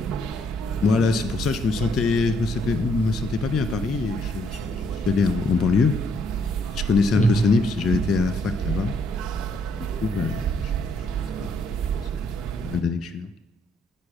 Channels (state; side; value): normal; both; correlation 0.70